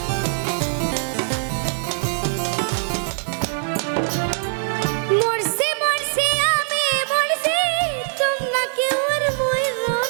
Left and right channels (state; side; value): silent; left; 64 dB below the other